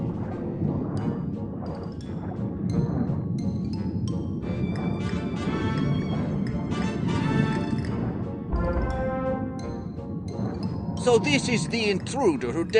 So this is the intruder who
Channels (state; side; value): identical; both; correlation 1.00